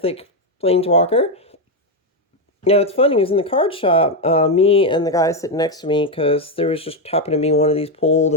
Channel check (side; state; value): both; normal; correlation 0.05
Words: Planeswalker. Now, it's funny, it was in the card shop, me and the guy sitting next to me, because there was just happened to be one of these pulled,